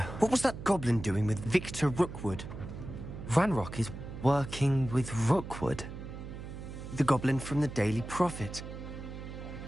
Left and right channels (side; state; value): right; noise; hum, 10 dB below the sound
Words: What was that goblin doing with Victor Rookwood? Ranrock is working with Rookwood. The goblin from the Daily Prophet.